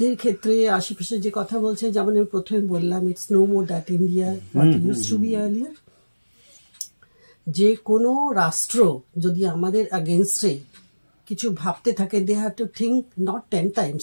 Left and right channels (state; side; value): inverted; both; correlation -1.00